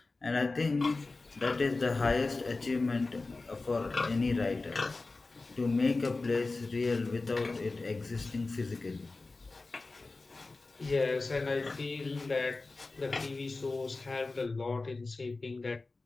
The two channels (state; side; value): quieter; right; 3.5 dB